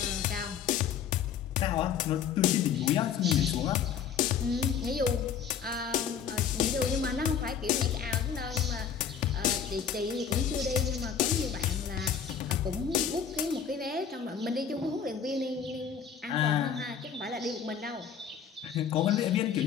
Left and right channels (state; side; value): quieter; right; 7.6 dB